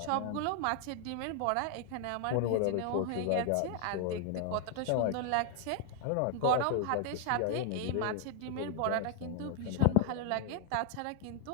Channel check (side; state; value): both; different; correlation 0.00